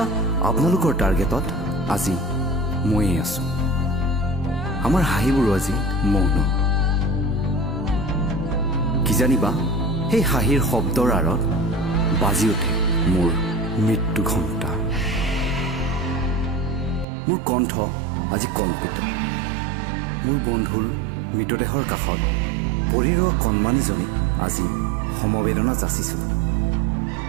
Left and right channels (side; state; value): left; drops out; at 17.1 s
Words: আপোনালোকৰ টাৰ্গেটত আজি ময়ে আছোঁ। আমাৰ হাঁহিবোৰো আজি মৌন। কি জানিবা সেই হাঁহিৰ শব্দৰ আঁৰত বাজি উঠে মোৰ মৃত্যু ঘণ্টা। মোৰ কণ্ঠ আজি কম্পিত। মোৰ বন্ধুৰ মৃতদেহৰ কাষত পৰি ৰোৱা কণমানিজনীক আজি সমবেদনা যাচিছোঁ।